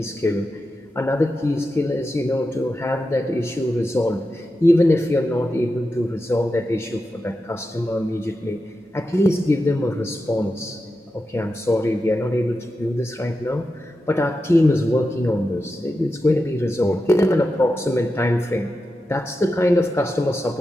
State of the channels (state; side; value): normal; both; correlation 0.90